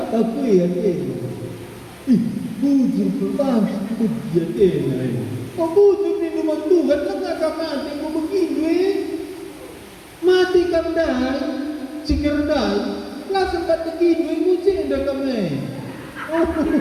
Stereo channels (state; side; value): identical; both; correlation 1.00